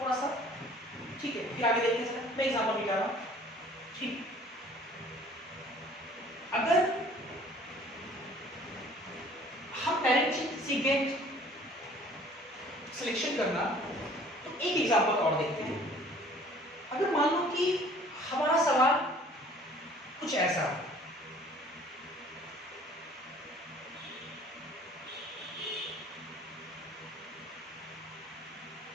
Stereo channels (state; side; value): normal; both; correlation 0.53